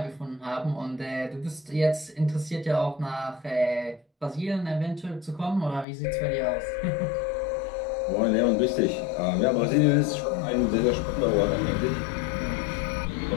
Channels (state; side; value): drops out; right; at 5.9 s